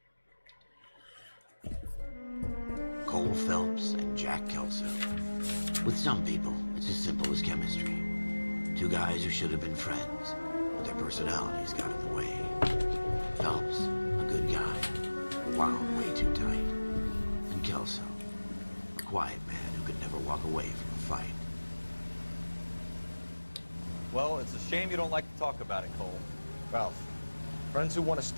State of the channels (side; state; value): both; inverted; correlation -1.00